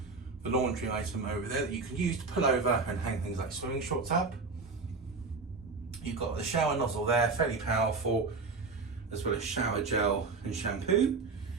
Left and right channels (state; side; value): quieter; left; 4.2 dB